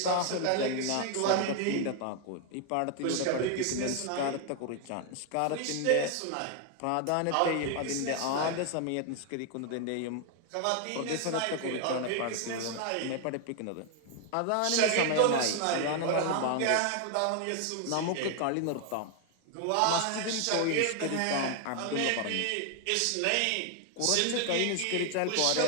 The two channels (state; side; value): different; both; correlation 0.00